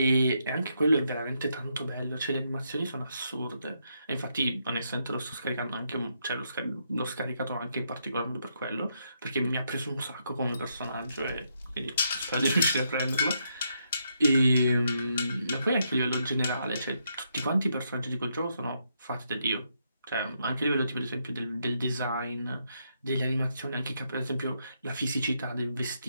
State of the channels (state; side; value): inverted; both; correlation -0.78